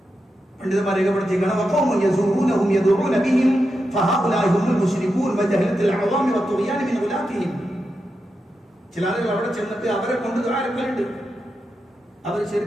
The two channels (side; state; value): both; normal; correlation 0.88